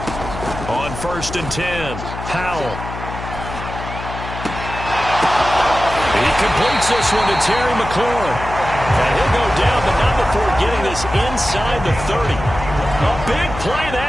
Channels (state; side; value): noise; left; hum, 9 dB below the sound